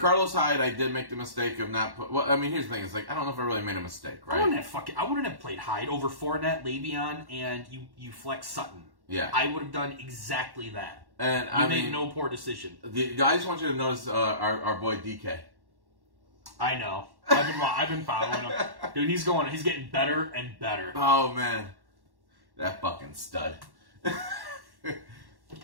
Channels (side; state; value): left; late; 1.1 ms